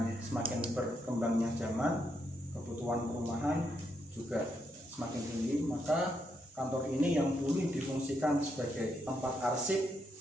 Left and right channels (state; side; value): normal; both; correlation 0.79